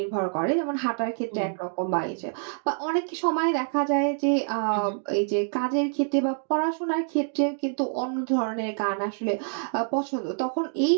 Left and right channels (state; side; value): silent; left; 61 dB below the other